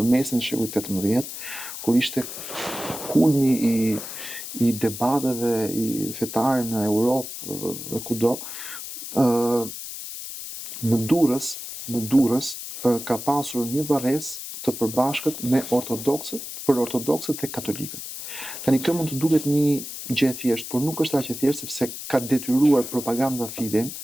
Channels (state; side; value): noise; left; hiss, 9 dB below the sound